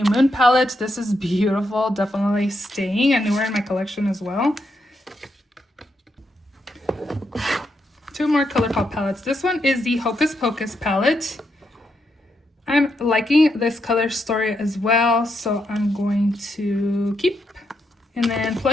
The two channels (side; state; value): both; normal; correlation 0.81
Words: Moon palette. This is beautiful, definitely staying and newer in my collection as well. Two more ColourPop palettes. This one is the Hocus Pocus palette. I'm liking this color story as well, so I'm going to keep. And then